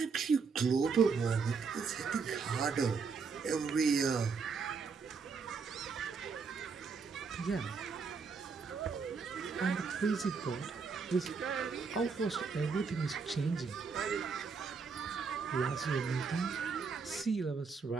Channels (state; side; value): quieter; left; 5.2 dB